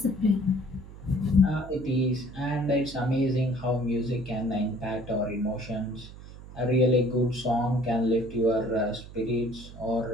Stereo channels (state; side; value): noise; right; hum, 16 dB below the sound